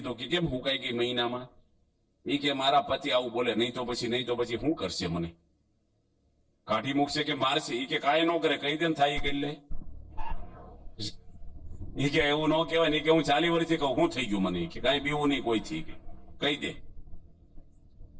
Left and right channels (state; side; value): identical; both; correlation 1.00